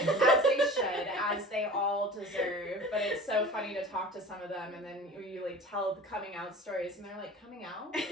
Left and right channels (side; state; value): both; normal; correlation 0.39